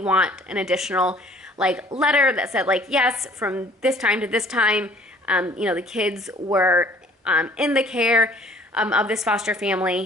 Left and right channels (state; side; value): normal; both; correlation 0.54